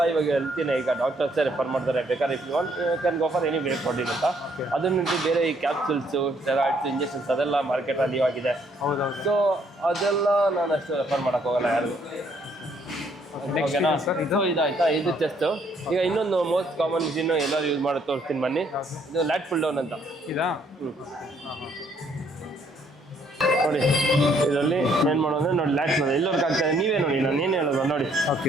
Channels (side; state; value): both; normal; correlation 0.67